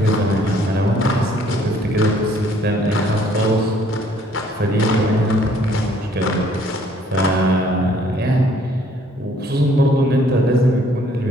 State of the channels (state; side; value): normal; both; correlation 0.61